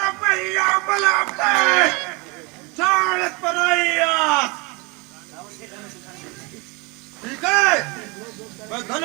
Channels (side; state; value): left; quieter; 27.7 dB